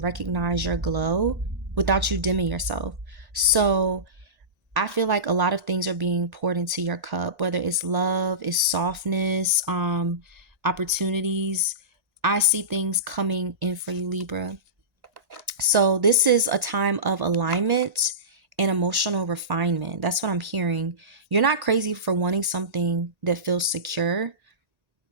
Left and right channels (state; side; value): late; left; 1.8 ms